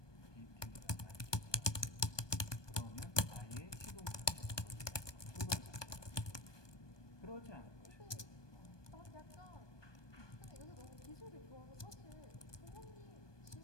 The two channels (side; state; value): right; late; 1.2 ms